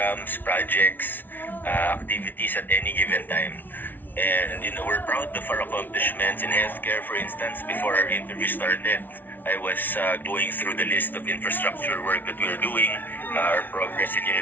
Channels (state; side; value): late; right; 0.089 ms